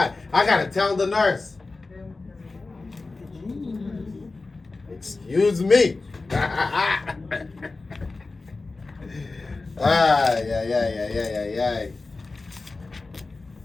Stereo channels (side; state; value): right; quieter; 3.6 dB